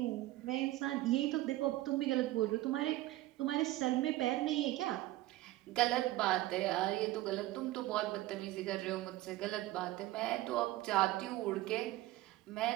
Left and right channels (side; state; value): left; quieter; 17.0 dB